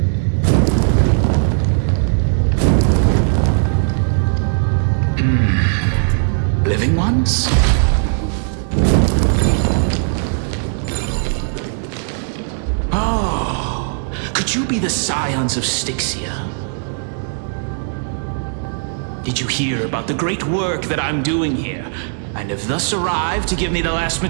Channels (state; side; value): silent; left; 67 dB below the other